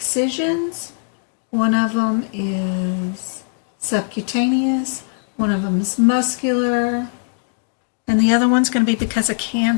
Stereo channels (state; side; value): silent; right; digital silence